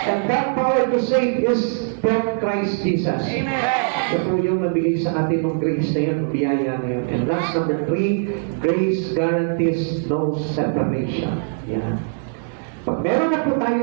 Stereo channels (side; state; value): left; silent; 65 dB below the other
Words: And that power to save is from Christ Jesus. Amen. Ito po yung nabigay sa atin ng grace na yun, biyaya na yun. And last, number 3, grace guarantees no separation. Yan. Pag meron na po